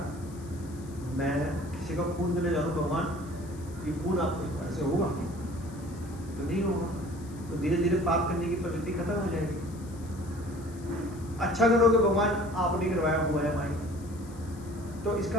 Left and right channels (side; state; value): left; noise; hiss, 22 dB below the sound